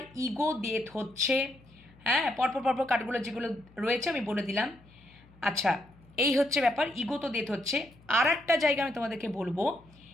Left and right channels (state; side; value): noise; left; hum, 26 dB below the sound